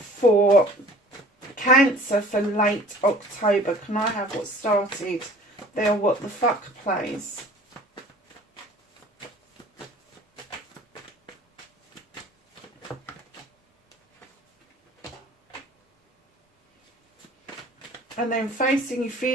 Cancer for late October. Can I have what started there? What the fuck, please? And then facing your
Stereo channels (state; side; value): normal; both; correlation 0.49